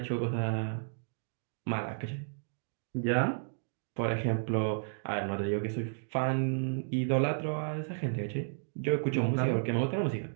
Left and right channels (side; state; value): left; silent; digital silence